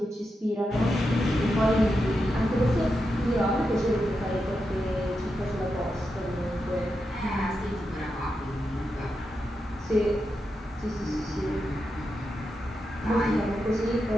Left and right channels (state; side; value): normal; both; correlation 0.87